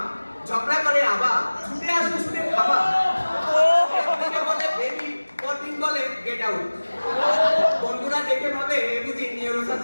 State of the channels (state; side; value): inverted; both; correlation -1.00